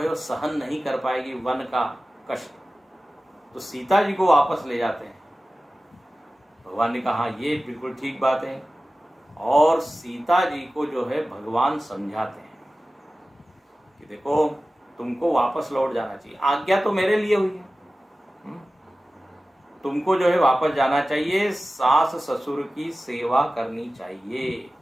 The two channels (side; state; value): both; normal; correlation 0.96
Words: है वो सहन नहीं कर पाएगी वन का कष्ट, तो सीता जी को वापस ले जाते हैं। भगवान ने कहा हाँ ये बिल्कुल ठीक बात है, और सीता जी को जो है भगवान समझाते हैं कि देखो तुमको वापस लौट जाना चाहिए, आज्ञा तो मेरे लिए हुई है, तुमको जो है वापस जाना चाहिए, सास ससुर की सेवा करनी चाहिए।